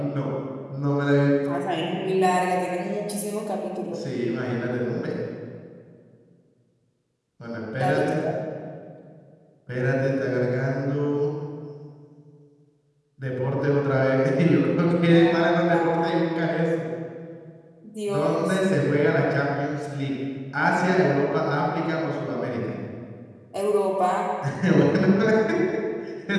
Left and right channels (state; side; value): identical; both; correlation 1.00